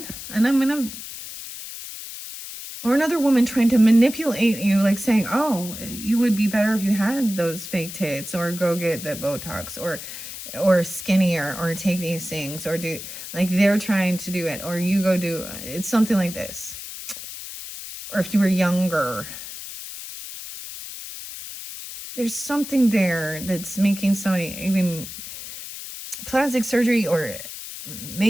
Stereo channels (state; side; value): noise; left; hiss, 10 dB below the sound